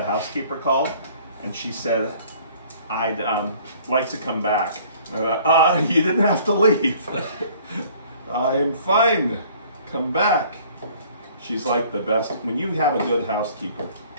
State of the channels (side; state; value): both; inverted; correlation -0.54